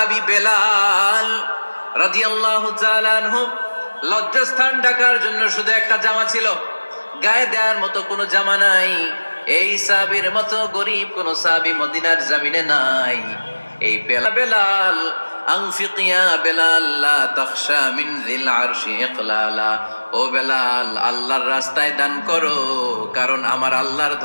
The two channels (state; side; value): inverted; both; correlation -1.00